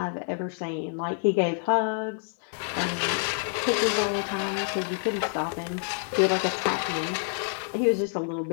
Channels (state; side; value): silent; right; 60 dB below the other